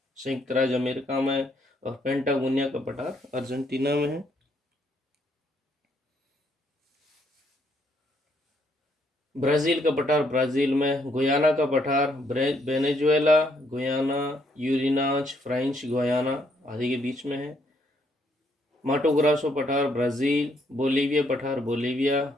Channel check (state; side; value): normal; both; correlation 0.71